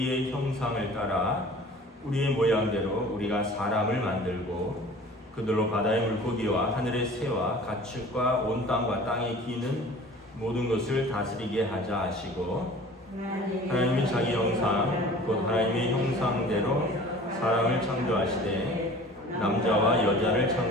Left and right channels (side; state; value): both; normal; correlation 0.44